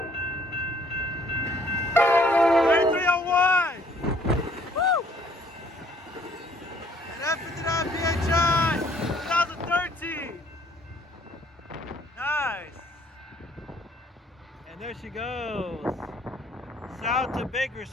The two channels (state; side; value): normal; both; correlation 0.62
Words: Woo! An F59PHI 2013. Nice. And there she goes. South to